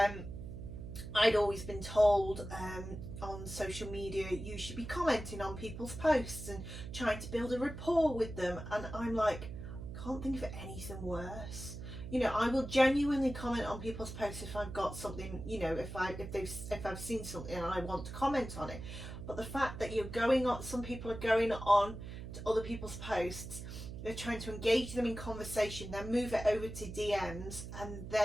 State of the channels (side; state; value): right; noise; hum, 9 dB below the sound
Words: I'd always been told on social media, you should be commenting on people's posts and trying to build a rapport with them. And I'm like, I can't think of anything worse. You know, I will genuinely comment on people's posts if I've got something, you know, if I've seen something and I want to comment on it. But the fact that you're going on, some people are going on to other people's posts, they're trying to engage them in conversation, then move it over to DMs, and